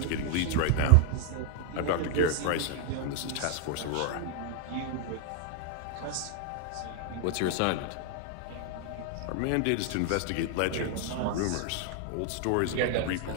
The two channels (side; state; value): both; different; correlation 0.00